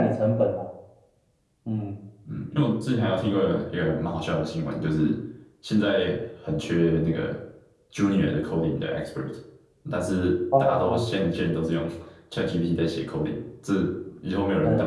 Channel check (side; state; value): both; identical; correlation 1.00